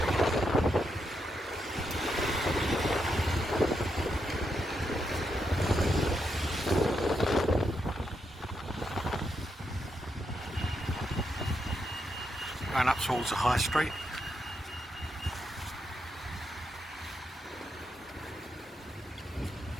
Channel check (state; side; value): normal; both; correlation 0.82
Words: Going up towards the high street.